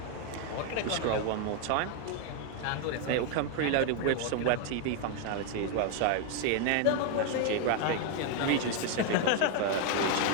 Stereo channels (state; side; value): different; both; correlation 0.01